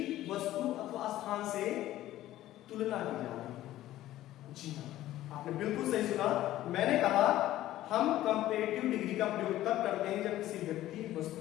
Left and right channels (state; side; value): quieter; right; 14.4 dB